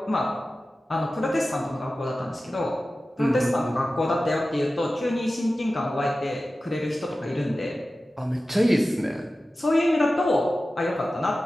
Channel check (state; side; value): normal; both; correlation 0.95